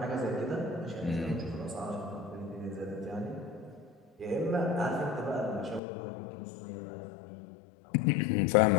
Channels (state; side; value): drops out; right; at 5.8 s